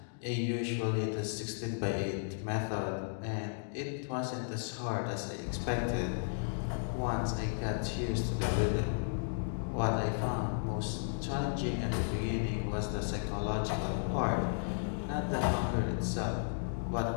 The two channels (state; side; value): silent; right; digital silence